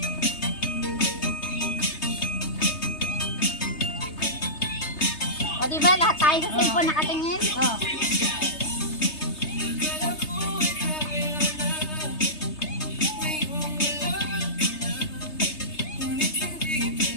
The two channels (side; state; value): right; late; 3.3 ms